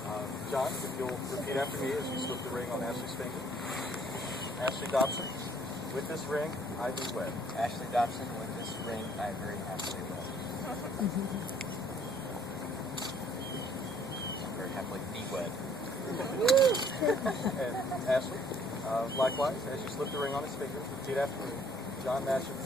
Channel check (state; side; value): normal; both; correlation 0.60